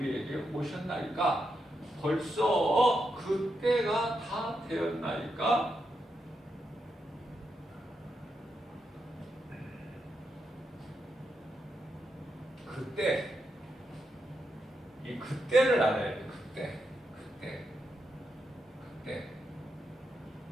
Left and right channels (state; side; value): normal; both; correlation 0.84